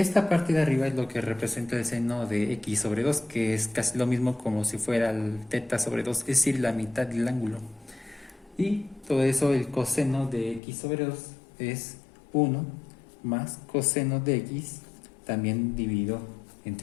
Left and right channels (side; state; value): right; drops out; at 10.6 s